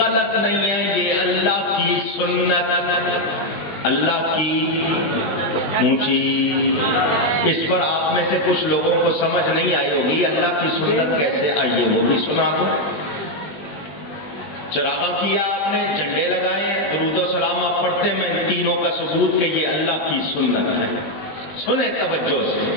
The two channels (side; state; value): right; late; 20 ms